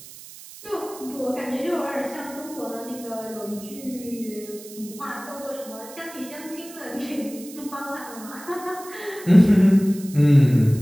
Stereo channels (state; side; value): noise; right; hiss, 17 dB below the sound